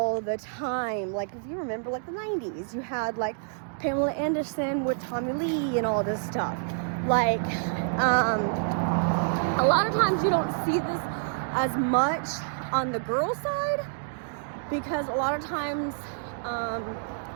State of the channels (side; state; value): left; silent; digital silence